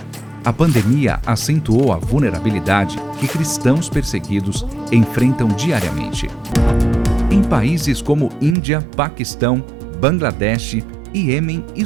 A pandemia acentuou a vulnerabilidade que cristãos perseguidos enfrentam diariamente. Em países como Índia, Paquistão, Bangladesh, Iêmen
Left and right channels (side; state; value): left; drops out; at 8.6 s